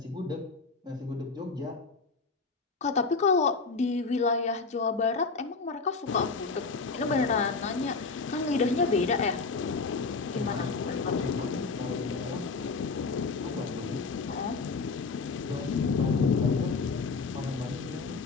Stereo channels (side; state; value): right; quieter; 4.3 dB